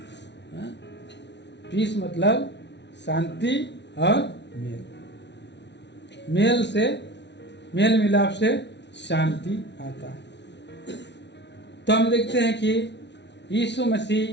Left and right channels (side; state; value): right; late; 0.51 ms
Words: पीस मतलब शांति और मेल, मेल से मेल मिलाप से शांति आता है। तो हम देखते हैं कि यीशु